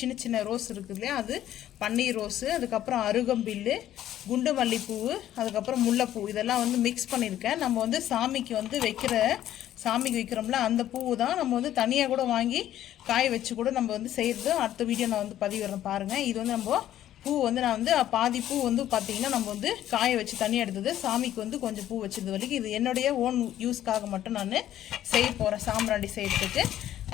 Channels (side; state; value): right; quieter; 12.2 dB